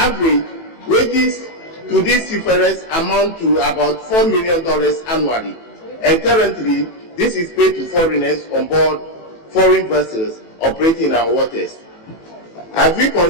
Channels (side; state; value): right; late; 18 ms